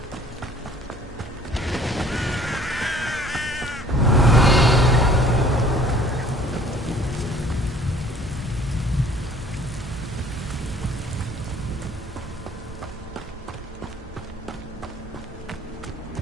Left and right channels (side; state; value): both; normal; correlation 0.54